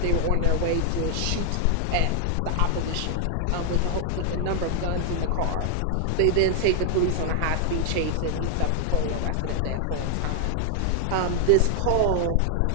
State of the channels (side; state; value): both; different; correlation 0.00